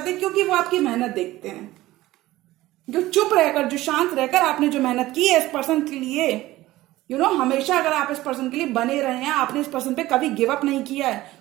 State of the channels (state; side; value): quieter; left; 16.9 dB